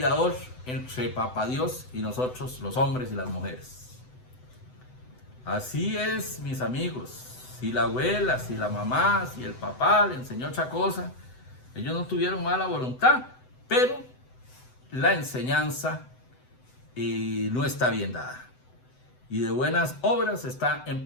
entre Papá Dios y nosotros, los hombres y las mujeres. Así es, mis amigos. Si la abuela, si la mamá, si el papá le enseñó otra cosa, ellos no tuvieron mala voluntad, pero la enseñanza no está bien dada. Y de buenas obras está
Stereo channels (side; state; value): right; late; 7.9 ms